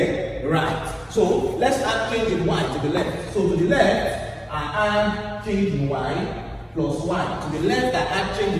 Right. So let's add change in y to the left. So to the left, I add change in y plus y. To the left, I add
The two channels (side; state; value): both; identical; correlation 1.00